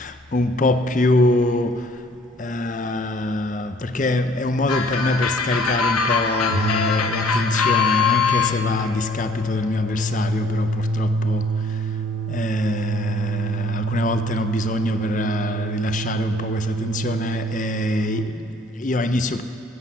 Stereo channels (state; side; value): normal; both; correlation 0.57